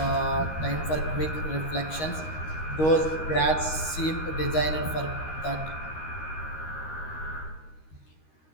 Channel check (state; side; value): late; right; 13 ms